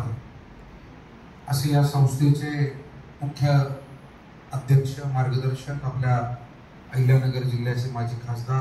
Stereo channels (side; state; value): both; identical; correlation 1.00